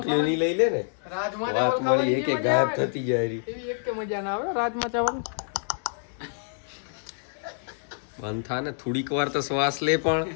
ની લઈ લે ને, રાજમા વાત મળી એક એક ગાયબ થતી જાય રહી. એવી એક કે મજા ના આવે રાજમા ચાવલ. બંધ થા ને થોડીક વાર તો શ્વાસ લે. પણ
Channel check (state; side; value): silent; right; digital silence